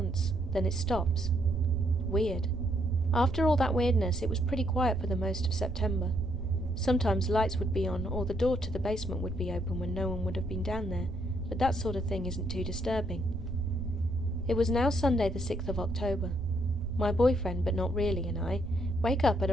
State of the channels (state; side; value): noise; right; rumble, 9 dB below the sound